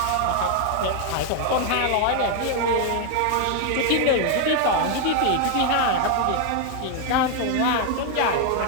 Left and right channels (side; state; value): both; different; correlation 0.00